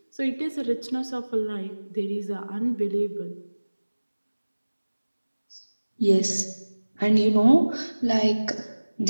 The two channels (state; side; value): inverted; both; correlation -1.00